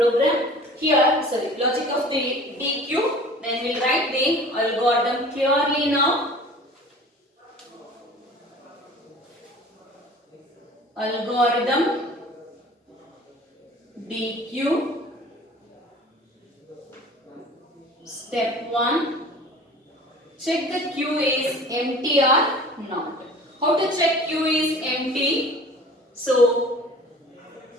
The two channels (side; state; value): both; normal; correlation 0.44